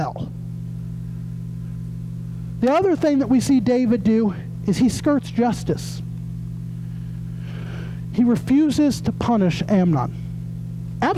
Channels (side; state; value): both; identical; correlation 1.00